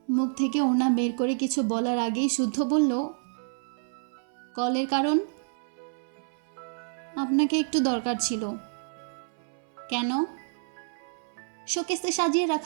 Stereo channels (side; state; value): left; silent; 59 dB below the other